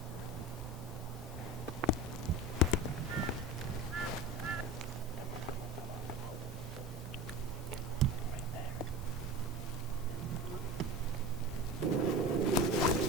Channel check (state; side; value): normal; both; correlation 0.32